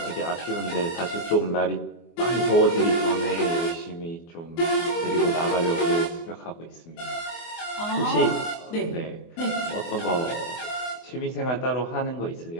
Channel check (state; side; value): late; right; 24 ms